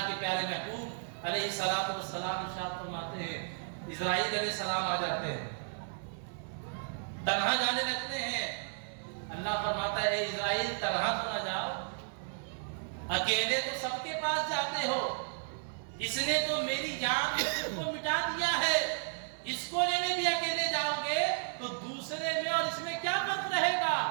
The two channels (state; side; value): silent; left; 55 dB below the other